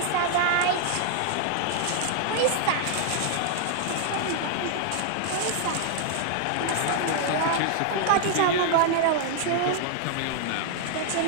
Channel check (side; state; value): both; different; correlation 0.00